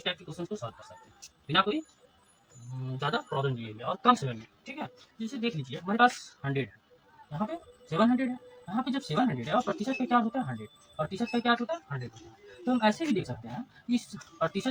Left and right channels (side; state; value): both; identical; correlation 1.00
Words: टाइप के क्वेश्चन को सॉल्व कर सकते हैं बिना कोई ज़्यादा प्रॉब्लम लिए हुए और कम समय में। ठीक है, जैसे देख लीजिए हमारे पास 100 है, यहाँ पे 700 है, यहाँ पे जब 700 है और प्रतिशत का क्या होता है 100, प्रतिशत का क्या होता है 100 होता है। तो हम ऐसे भी देख सकते हैं कि इस